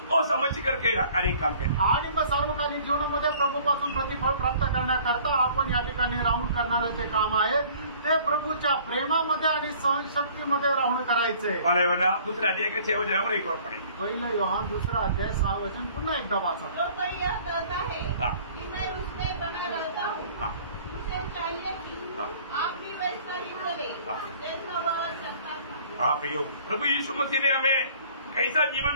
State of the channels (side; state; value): both; inverted; correlation -0.52